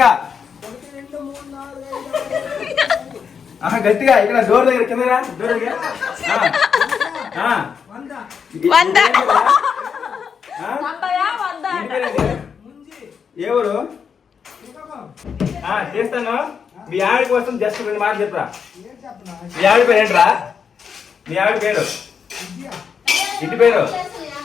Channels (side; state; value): right; quieter; 6.6 dB